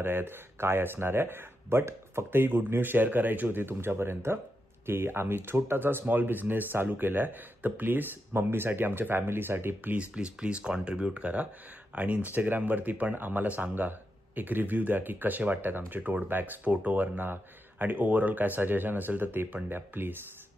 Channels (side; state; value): both; normal; correlation 0.86